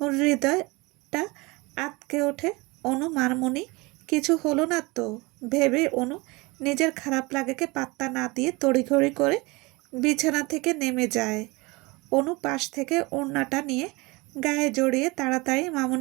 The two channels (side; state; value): left; quieter; 24.6 dB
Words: হৃদয়টা আঁতকে ওঠে। অনু মারমণি, কিছু হলো না তো ভেবে অনু নিজের খারাপ লাগাকে পাত্তা না দিয়ে তড়িঘড়ি করে বিছানা থেকে নেমে যায়। অনু পাশ থেকে ওড়নাটা নিয়ে গায়ে জড়িয়ে তাড়াতাড়ি